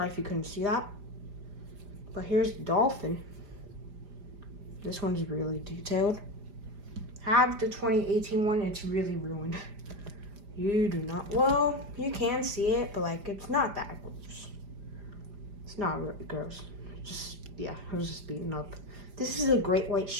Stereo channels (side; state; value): left; late; 4.9 ms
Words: if you couldn't see that. But here's the dolphin. This one's really detailed. I have the 2018 one, it's really ruined. You do not, well, you can see it, but like, it's not that gross. It's not really gross. Just, yeah, I was just beaten up. This is a great white